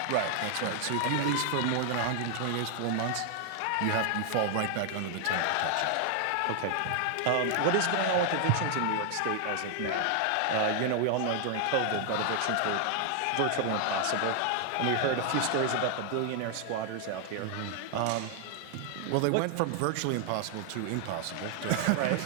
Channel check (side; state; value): both; different; correlation 0.00